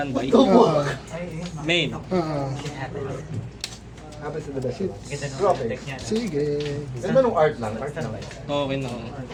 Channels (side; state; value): both; identical; correlation 1.00